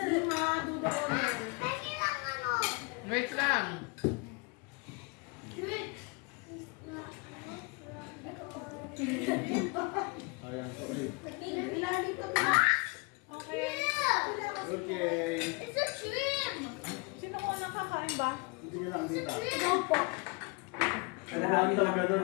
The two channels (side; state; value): right; quieter; 30.3 dB